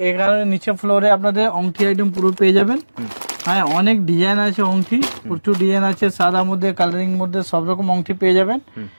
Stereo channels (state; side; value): inverted; both; correlation -1.00